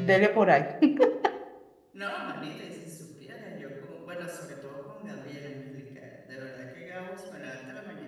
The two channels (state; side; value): identical; both; correlation 1.00